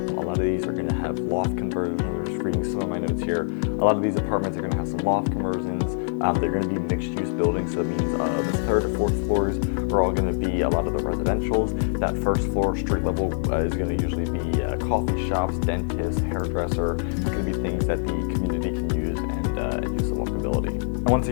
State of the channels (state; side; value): silent; right; digital silence